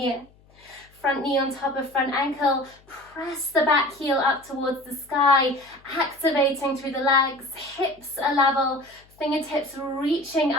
Front knee on top of front ankle, press the back heel up towards the sky, activating through the legs, hips are level, fingertips reaching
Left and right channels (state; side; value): noise; left; hum, 29 dB below the sound